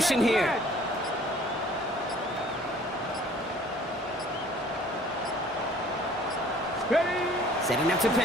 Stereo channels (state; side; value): normal; both; correlation 0.53